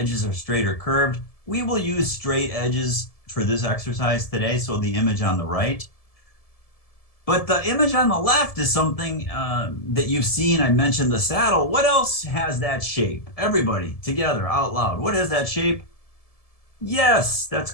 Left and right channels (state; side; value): late; right; 1.7 ms